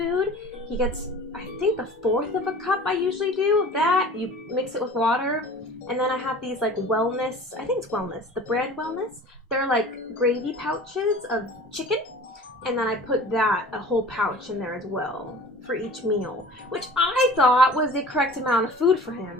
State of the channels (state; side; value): normal; both; correlation 0.42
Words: He gets, I think, a fourth of a cup. I usually do of that. You mix it with water, and then I have these like wellness. I think it's wellness. The brand wellness. They're like gravy pouches of chicken, and then I put that a whole pouch in there as well for each meal, which I thought was the correct amount of food for